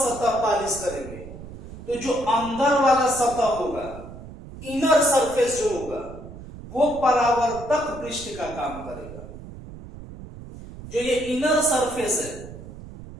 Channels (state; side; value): noise; right; rumble, 14 dB below the sound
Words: पॉलिश करेंगे, तो जो अंदर वाला सतह होगा, इनर सरफेस जो होगा, वो परावर्तक पृष्ठ का काम करेगा। जो ये इनर सरफेस है,